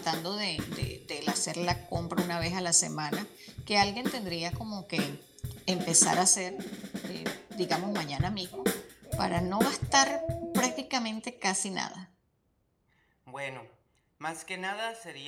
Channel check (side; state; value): both; identical; correlation 1.00